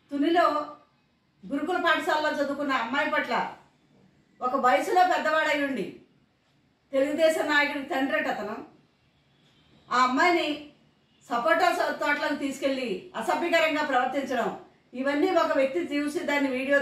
తునిలో గురుకుల పాఠశాలలో చదువుకున్న అమ్మాయి పట్ల ఒక వయసులో పెద్దవాడై ఉండి తెలుగుదేశం నాయకుడికి తండ్రి అతను ఆ అమ్మాయిని సపోటా తోటలకు తీసుకెళ్లి అసభ్యకరంగా ప్రవర్తించడం, ఇవన్నీ ఒక వ్యక్తి చూసి దాన్ని వీడియో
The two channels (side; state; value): both; identical; correlation 1.00